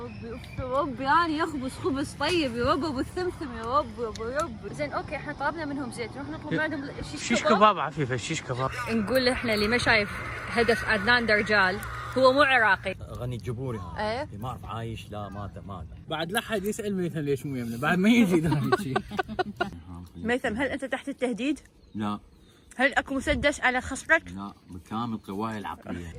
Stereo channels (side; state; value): both; identical; correlation 1.00